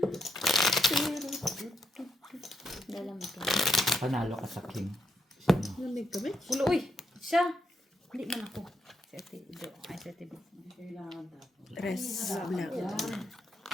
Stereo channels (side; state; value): both; normal; correlation 0.80